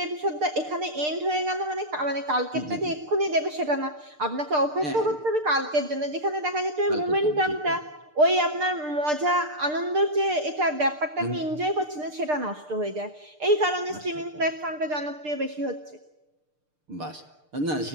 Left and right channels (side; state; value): left; late; 6.7 ms